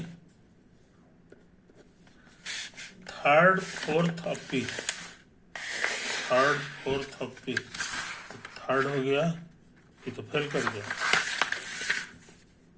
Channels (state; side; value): identical; both; correlation 1.00